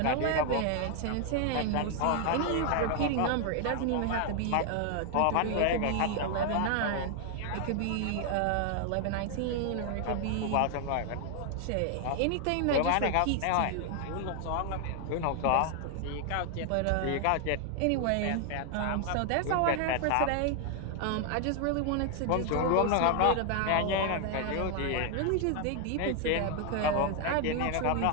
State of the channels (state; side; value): different; both; correlation 0.00